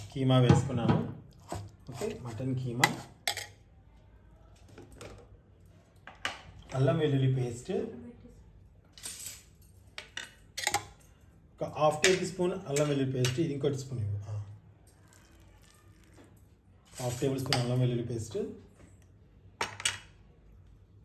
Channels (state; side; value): identical; both; correlation 1.00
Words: కీమా వేసుకున్నాను. ఓకే, మటన్ కీమా, అల్లం వెల్లుల్లి పేస్ట్, ఒక 1/2 టేబుల్ స్పూన్ అల్లం వెల్లుల్లి పేస్ట్. ఇది ఇంకోటి స్పూన్ ఇవ్వు. 1/2 టేబుల్ స్పూన్ అల్లం వెల్లుల్లి పేస్ట్,